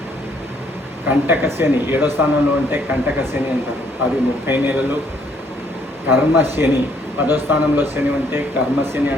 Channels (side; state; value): both; normal; correlation 0.66